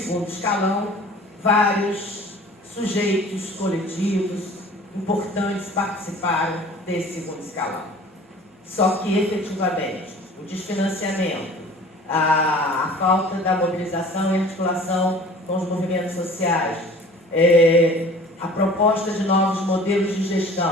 escalão, vários sujeitos coletivos importantes participaram desse segundo escalão. Só que, efetivamente, o desfinanciamento, a falta da mobilização e articulação com os movimentos sociais, a proposta de novos modelos de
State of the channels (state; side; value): normal; both; correlation 0.46